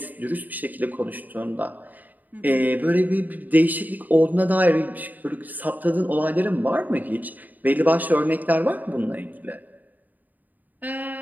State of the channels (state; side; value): late; left; 0.084 ms